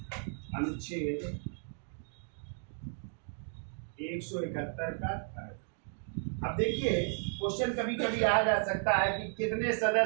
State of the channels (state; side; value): silent; left; 55 dB below the other